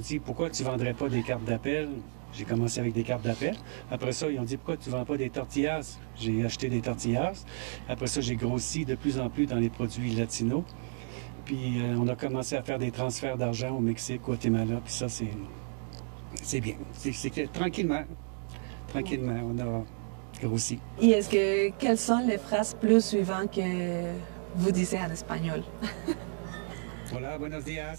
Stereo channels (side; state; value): left; silent; 57 dB below the other